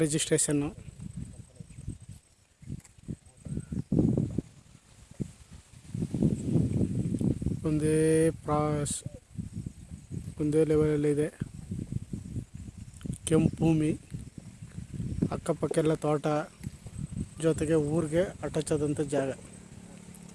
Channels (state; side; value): identical; both; correlation 1.00